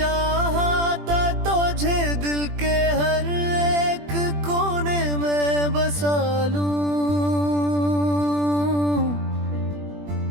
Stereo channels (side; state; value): left; late; 20 ms